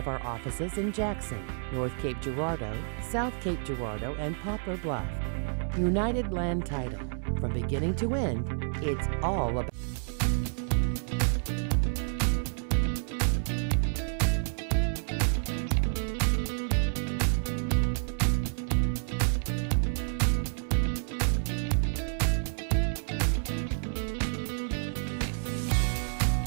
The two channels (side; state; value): left; silent; 58 dB below the other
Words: our offices in Jackson, North Cape Girardeau, South Cape Girardeau, and Poplar Bluff. United Land Title. From beginning to end, it's all about.